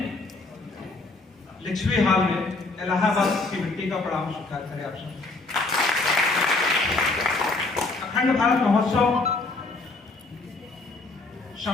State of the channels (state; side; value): quieter; right; 3.4 dB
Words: लिच्छवी हाल में इलाहाबाद की मिट्टी का प्रणाम स्वीकार करें आप सब। अखंड भारत महोत्सव